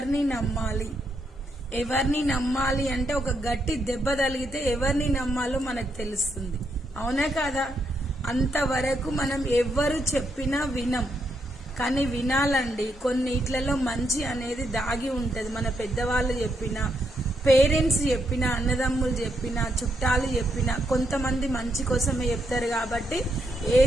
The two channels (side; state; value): both; normal; correlation 0.78